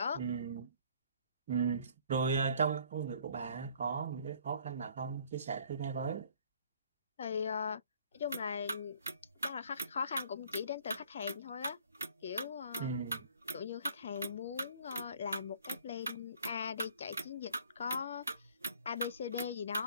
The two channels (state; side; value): inverted; both; correlation -0.55